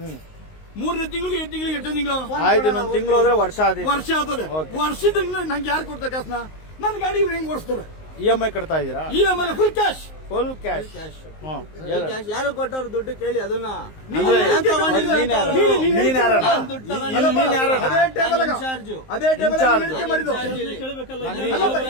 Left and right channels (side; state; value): right; late; 19 ms